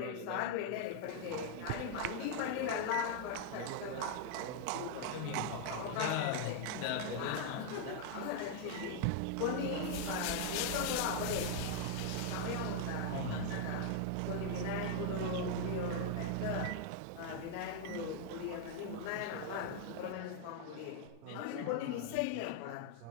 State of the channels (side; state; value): both; different; correlation 0.00